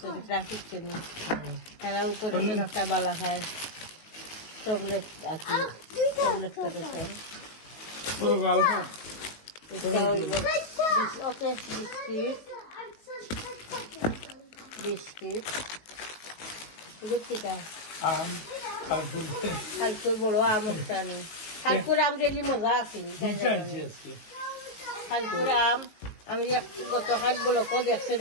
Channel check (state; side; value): late; right; 19 ms